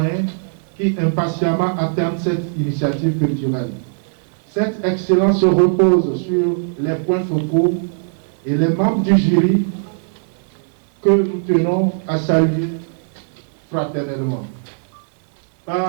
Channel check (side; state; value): left; silent; digital silence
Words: qui impatiemment attendent cette initiative culturelle. Cette excellence se repose sur les points focaux et les membres du jury que nous tenons à saluer fraternellement